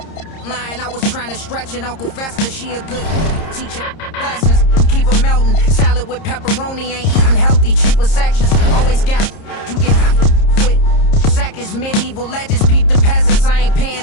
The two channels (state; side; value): late; right; 30 ms